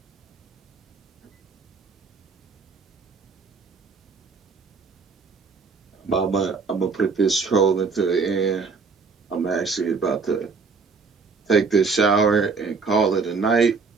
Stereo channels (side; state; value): left; quieter; 4.8 dB